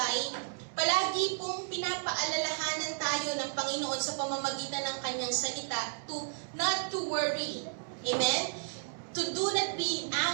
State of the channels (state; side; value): silent; left; digital silence